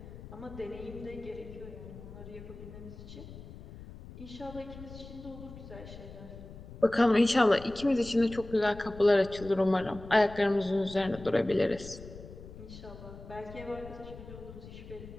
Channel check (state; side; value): noise; left; rumble, 15 dB below the sound